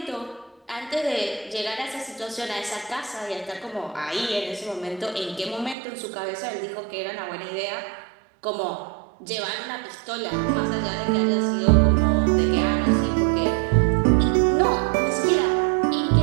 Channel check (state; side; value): drops out; left; at 5.8 s